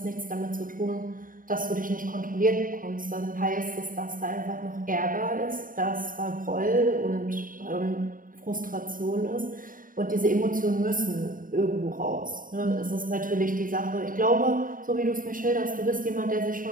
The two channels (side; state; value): left; late; 0.40 ms